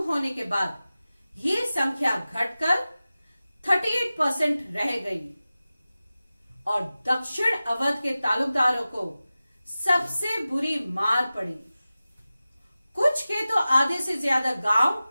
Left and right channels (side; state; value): both; inverted; correlation -0.96